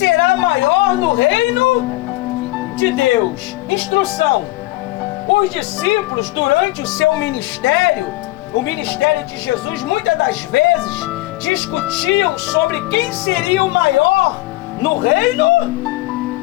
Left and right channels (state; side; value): quieter; right; 19.0 dB